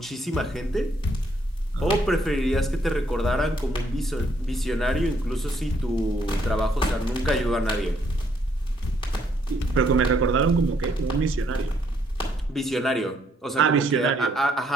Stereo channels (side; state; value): both; normal; correlation 0.70